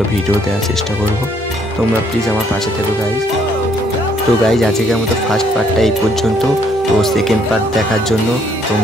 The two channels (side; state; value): both; normal; correlation 0.67